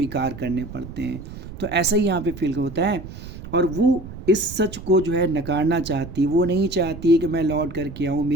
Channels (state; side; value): noise; right; rumble, 13 dB below the sound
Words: करने पड़ते हैं। तो ऐसा ही यहाँ पे फील होता है, और वो इस सच को जो है नकारना चाहती, वो नहीं चाहती है कि मैं लौट करके आऊँ,